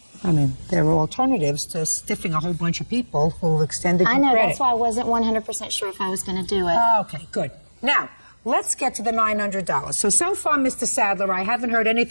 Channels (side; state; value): both; inverted; correlation -1.00